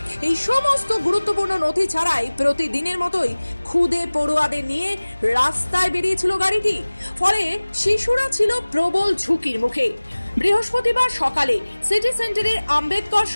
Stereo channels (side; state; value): both; inverted; correlation -1.00